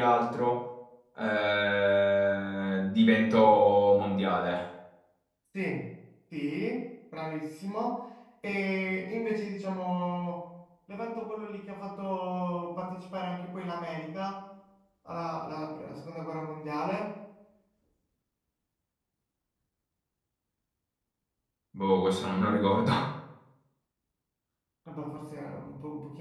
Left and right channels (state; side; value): identical; both; correlation 1.00